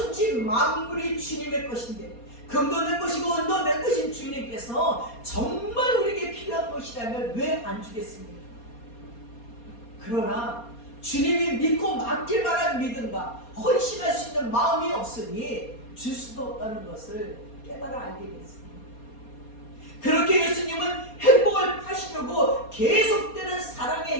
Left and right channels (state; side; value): late; right; 4.2 ms